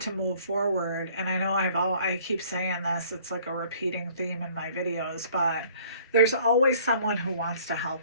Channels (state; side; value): inverted; both; correlation -0.56